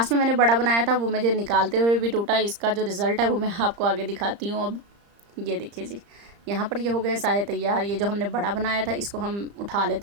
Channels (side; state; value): left; late; 35 ms